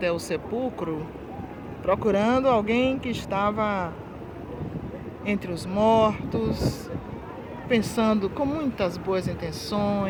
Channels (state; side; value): identical; both; correlation 1.00